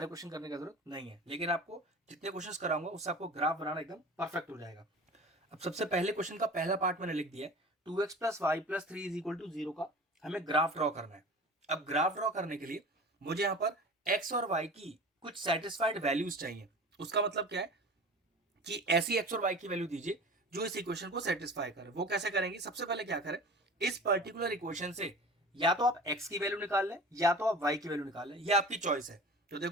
क्वेश्चन करने की जरूरत नहीं है। लेकिन आपको जितने क्वेश्चन कराऊंगा उससे आपको ग्राफ बनाना एकदम परफेक्ट हो जाएगा। अब सबसे पहले क्वेश्चन का पहला पार्ट मैंने लिख दिया है, 2x plus y plus 3 is equal to 0 का हमें ग्राफ ड्रॉ करना है। अब ग्राफ ड्रॉ करने के लिए मुझे यहाँ पर x और y की कुछ सेटिस्फाइड वैल्यूज चाहिए। उसका मतलब क्या है कि ऐसी x और y की वैल्यू दीजिए जो इस इक्वेशन को सेटिस्फाई करे। वो कैसे करेंगे? सबसे पहले क्या करें, इस पर्टिकुलर इक्वेशन से या तो आप x की वैल्यू निकाल लें या तो आप y की वैल्यू निकाल लें, ये आपकी चॉइस है। तो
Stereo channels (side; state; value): both; normal; correlation 0.38